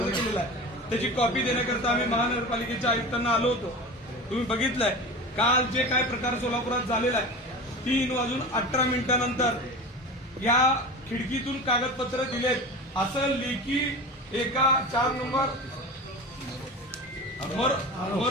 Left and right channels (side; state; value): both; normal; correlation 0.31